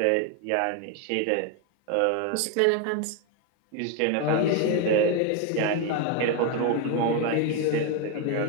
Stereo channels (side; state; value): both; different; correlation 0.01